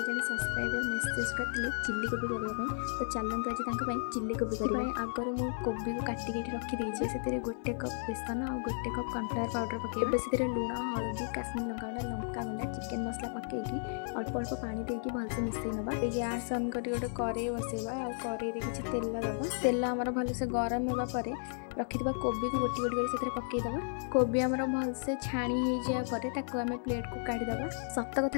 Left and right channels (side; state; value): right; silent; 55 dB below the other